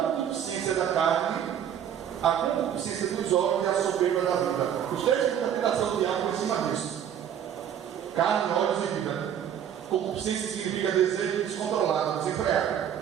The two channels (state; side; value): quieter; left; 9.3 dB